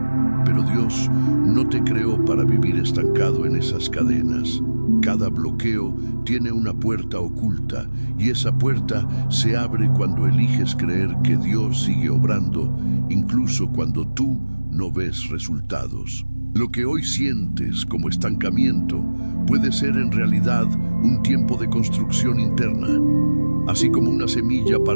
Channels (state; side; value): inverted; both; correlation -1.00